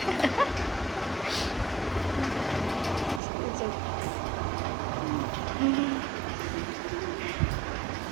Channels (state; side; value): drops out; left; at 3.2 s